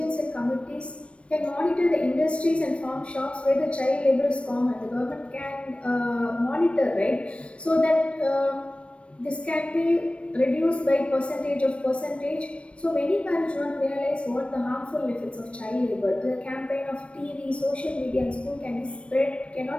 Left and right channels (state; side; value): late; right; 0.061 ms